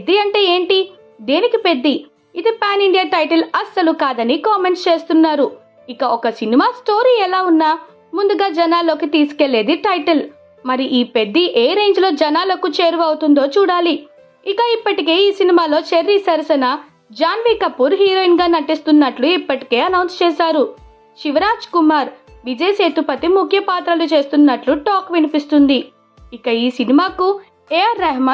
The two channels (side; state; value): both; identical; correlation 1.00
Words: అంటే ఏంటి, దేనికి పెద్ది, ఇది పాన్ ఇండియా టైటిల్ అస్సలు కాదని కామెంట్స్ చేస్తున్నారు. ఇక ఒక సినిమా స్టోరీ ఎలా ఉన్నా ముందుగా జనాల్లోకి తీసుకెళ్లేది టైటిల్. మరి ఈ పెద్ది ఏ రేంజ్ లో జనాలకు చేరువవుతుందో చూడాలి. ఇక ఇప్పటికే ఈ సినిమాలో చెర్రీ సరసన జాన్వీ కపూర్ హీరోయిన్ గా నటిస్తున్నట్లు ఇప్పటికే అనౌన్స్ చేశారు. శివరాజ్ కుమార్, విజయ్ సేతుపతి ముఖ్య పాత్రలు చేస్తున్నట్లు టాక్ వినిపిస్తుంది. ఇక ఈ సినిమాకు AR